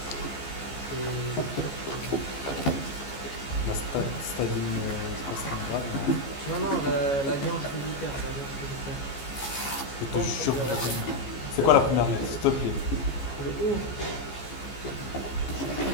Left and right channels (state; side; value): late; right; 15 ms